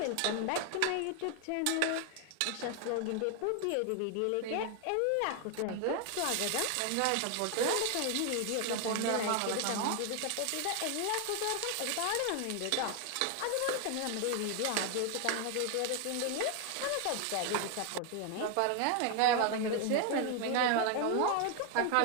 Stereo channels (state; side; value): different; both; correlation 0.00